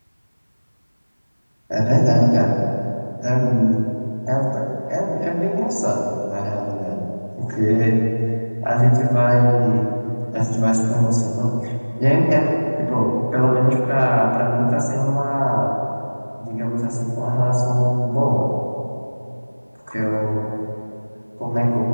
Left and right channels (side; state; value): both; inverted; correlation -1.00